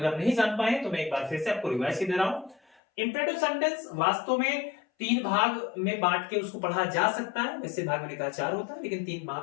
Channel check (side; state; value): right; drops out; at 2.8 s